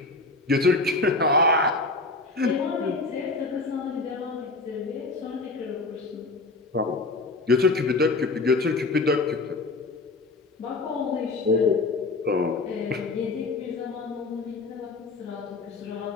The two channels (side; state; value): right; quieter; 3.5 dB